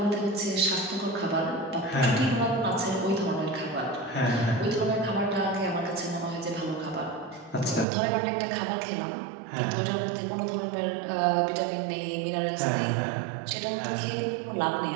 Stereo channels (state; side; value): drops out; left; at 7.9 s